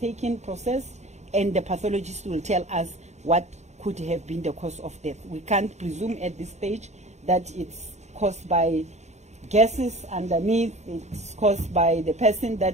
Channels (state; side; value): late; left; 0.33 ms